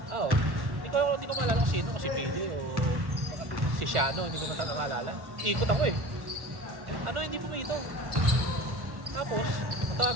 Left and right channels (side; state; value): left; late; 1.1 ms